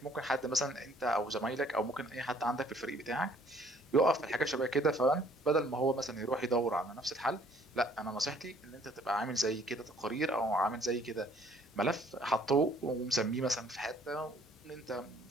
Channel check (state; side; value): normal; both; correlation 0.60